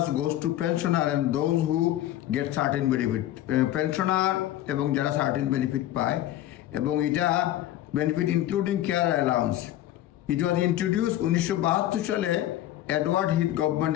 goes to pensioner and those who get certain benefit. Pensioner এবং যারা certain benefit পায়, এবং এটা benefit including care allowance. It was introduce 1972 সালে এডওয়ার্ড হিথ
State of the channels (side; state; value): right; quieter; 13.5 dB